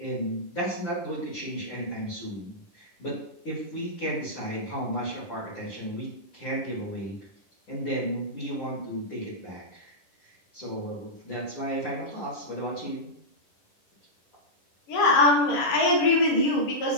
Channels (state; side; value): late; right; 10 ms